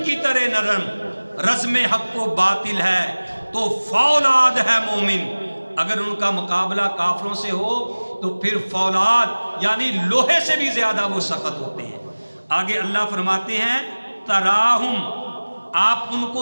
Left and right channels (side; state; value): both; inverted; correlation -1.00